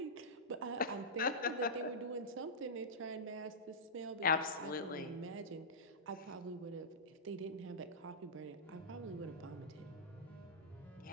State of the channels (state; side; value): normal; both; correlation -0.14